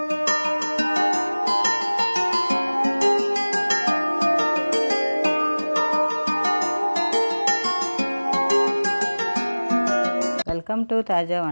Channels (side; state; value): both; inverted; correlation -1.00